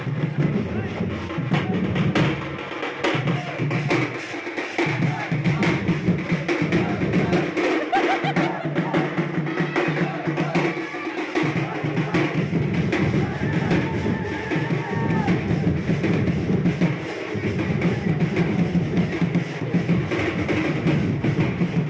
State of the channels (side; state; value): both; identical; correlation 1.00